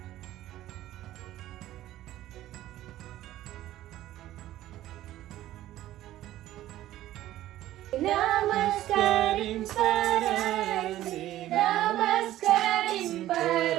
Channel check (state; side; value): quieter; left; 14.2 dB